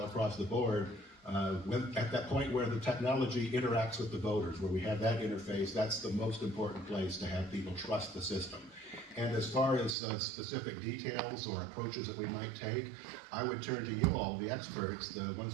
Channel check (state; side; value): drops out; left; at 10.0 s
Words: across the board. At that point where the technology interacts with the voters, where we have that interface, that's the most important place to have people trust the system. And as far as specific details or approaches that we might take, I would turn to you all, the experts, the